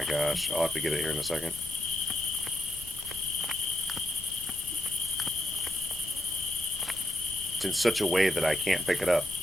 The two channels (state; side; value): noise; left; rumble, 18 dB below the sound